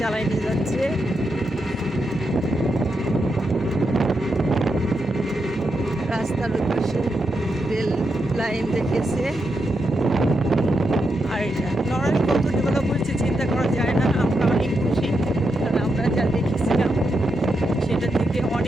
নিয়ে যাচ্ছে। রাস্তার পাশে রেল লাইন দেখেছে। আর এটা নড়াইল কত ডেভেলপ হয়েছে চিন্তা করা যায় না। আমরা অনেক খুশি, কারণ আমরা যা দেখেছিলাম সেটা থেকে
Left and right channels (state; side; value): normal; both; correlation 0.84